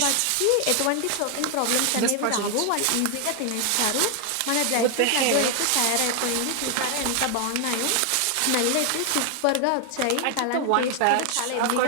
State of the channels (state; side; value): different; both; correlation 0.01